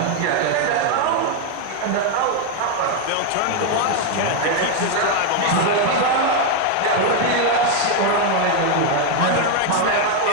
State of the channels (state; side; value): different; both; correlation 0.01